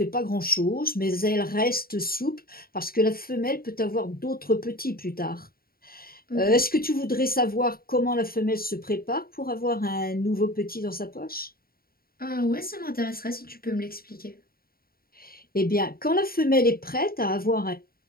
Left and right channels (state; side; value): late; right; 0.43 ms